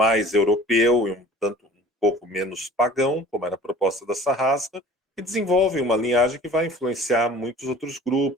europeu e um tanto um pouco menos pagão, como era a proposta da Sarrasca, e desenvolvem uma linhagem que vai influenciar muitos outros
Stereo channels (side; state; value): both; normal; correlation 0.47